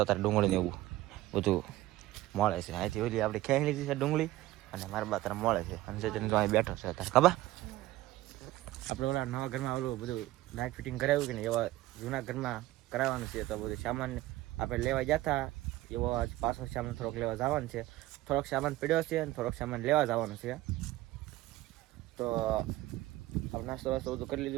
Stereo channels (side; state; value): left; quieter; 16.7 dB